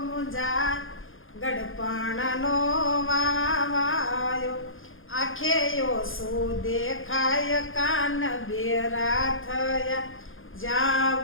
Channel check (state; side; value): late; right; 0.59 ms